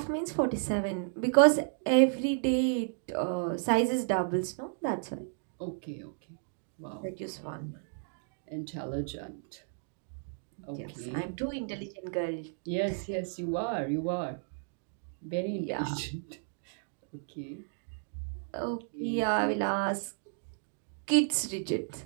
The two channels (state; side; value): silent; left; digital silence